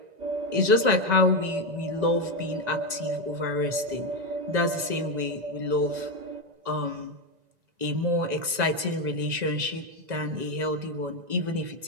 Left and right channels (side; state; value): left; late; 1.9 ms